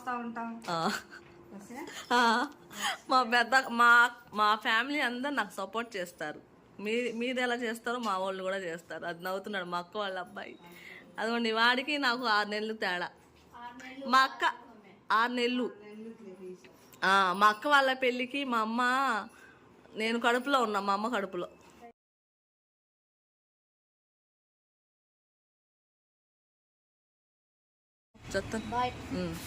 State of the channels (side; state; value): both; identical; correlation 1.00